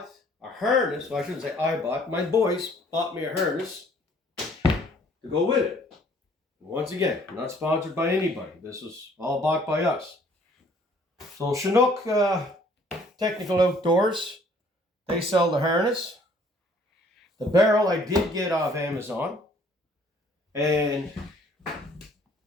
a harness, well I shouldn't say I bought, my boys bought me a harness to go with it. Once again, I'm not sponsored by anybody. This was all bought by us. So Chinook Technical Outdoors, they sell the harness. The barrel I did get off Amazon. And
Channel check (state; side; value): normal; both; correlation 0.59